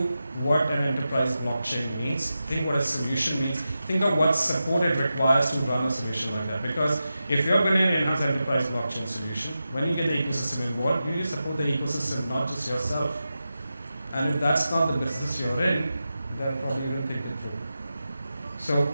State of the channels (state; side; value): inverted; both; correlation -0.91